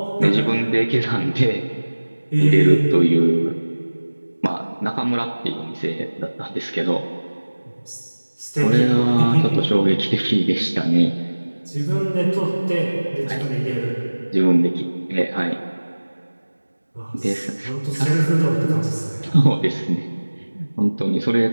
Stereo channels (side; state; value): both; inverted; correlation -1.00